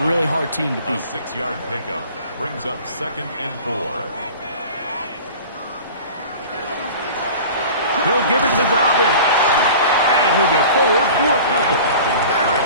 really hard team to beat. A 6-yard pickup brings up second and 4. He'll give it to Dobbins. And he'll get forward for a couple.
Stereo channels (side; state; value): both; inverted; correlation -0.40